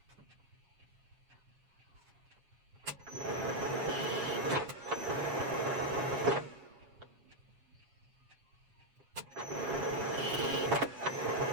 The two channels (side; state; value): left; late; 7.3 ms